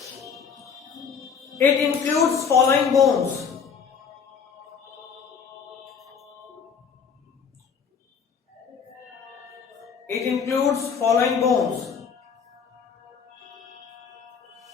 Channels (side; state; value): right; quieter; 6.4 dB